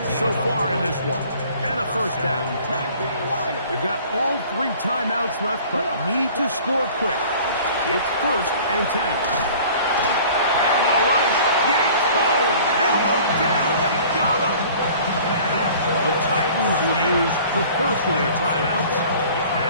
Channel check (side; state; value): both; inverted; correlation -0.48